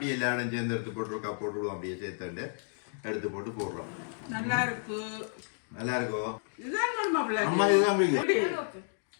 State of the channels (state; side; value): silent; right; digital silence